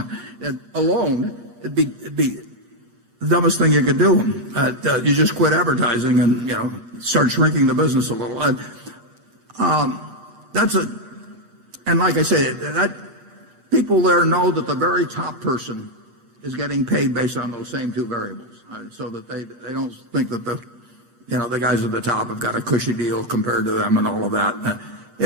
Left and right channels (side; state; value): left; late; 8.5 ms